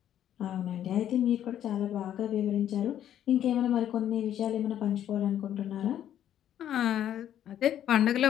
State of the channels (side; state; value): right; quieter; 10.8 dB